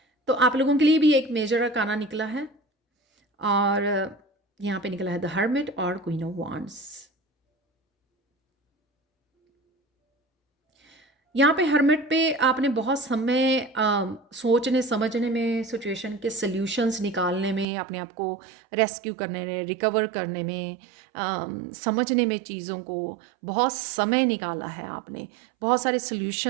तो आप लोगों के लिए भी एक मेजर अरकाना निकला है, और यहाँ पे निकला है द हर्मिट और क्वीन ऑफ वांड्स। यहाँ पे हर्मिट पे आपने बहुत समय सोचने समझने में, सिचुएशन के सल्यूशंस निकालने में, अपने आप को रेस्क्यू करने में, रिकवर करने में, समझने में चीज़ों को बहुत समय निकाला है आपने। बहुत सारे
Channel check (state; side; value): drops out; left; at 17.7 s